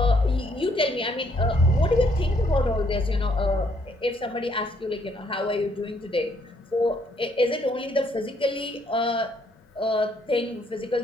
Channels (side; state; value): both; normal; correlation 0.69